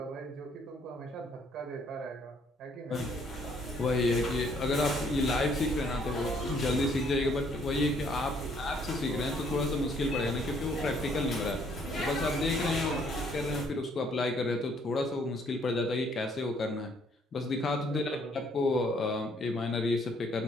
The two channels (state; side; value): normal; both; correlation 0.65